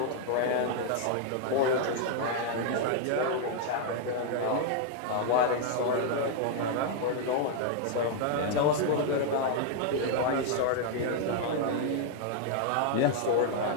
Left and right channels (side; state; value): both; different; correlation 0.00